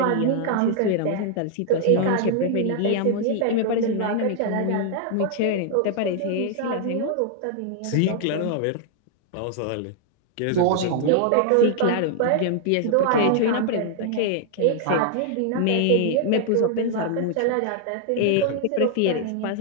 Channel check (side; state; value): both; different; correlation 0.00